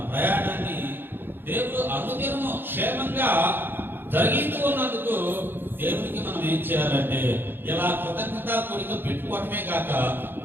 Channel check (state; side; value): late; left; 0.10 ms